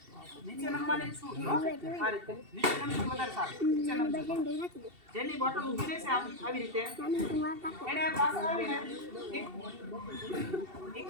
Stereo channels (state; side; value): late; left; 2.7 ms